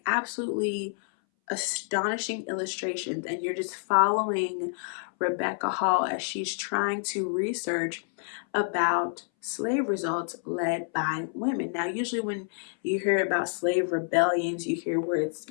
absolutely astonishing illustrations, and you're just following Rebecca Hall as she's trying to research about slave results led by women. Now, usually when you hear about slave rebellions, you hear words,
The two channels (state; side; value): silent; right; 59 dB below the other